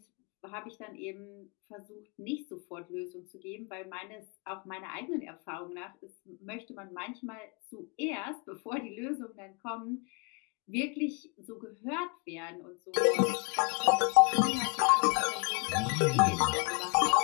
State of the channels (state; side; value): quieter; right; 34.5 dB